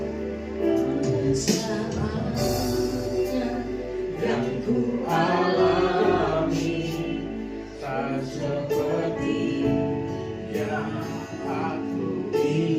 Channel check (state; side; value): identical; both; correlation 1.00